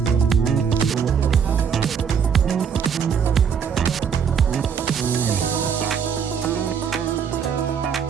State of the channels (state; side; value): quieter; left; 7.1 dB